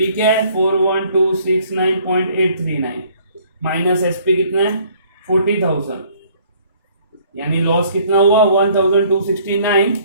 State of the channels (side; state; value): both; inverted; correlation -0.59